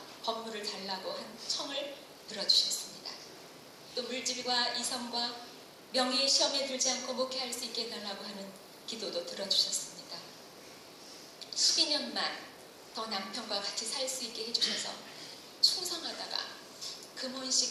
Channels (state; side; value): identical; both; correlation 1.00